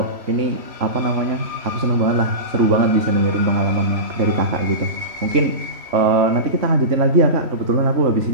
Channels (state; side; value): late; left; 3.1 ms